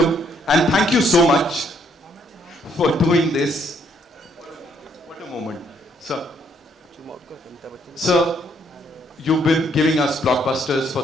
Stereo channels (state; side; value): normal; both; correlation 0.69